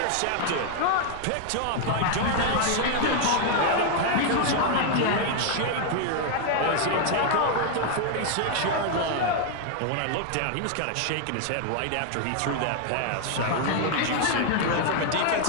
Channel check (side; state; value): both; different; correlation 0.00